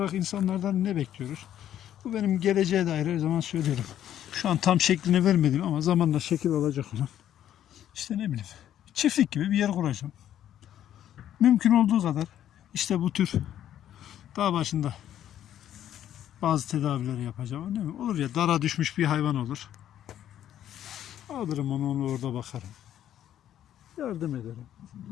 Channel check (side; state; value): right; quieter; 11.1 dB